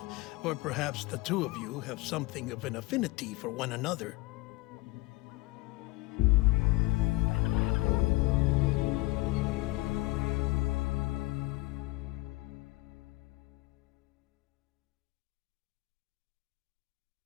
Or perhaps the two of you have something of an affinity for one another.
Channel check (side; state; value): right; quieter; 21.1 dB